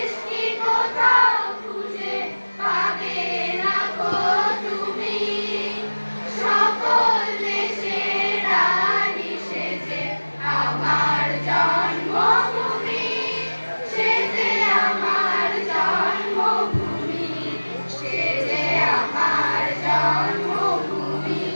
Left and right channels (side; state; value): both; inverted; correlation -1.00